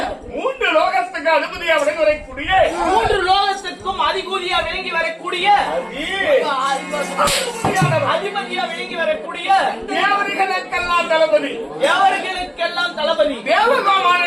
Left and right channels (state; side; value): identical; both; correlation 1.00